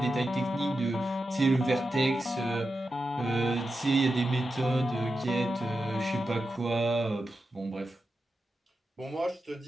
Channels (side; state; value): both; normal; correlation 0.90